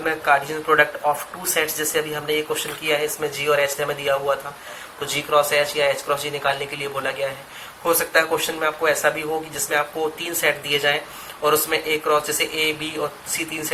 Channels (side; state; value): both; identical; correlation 1.00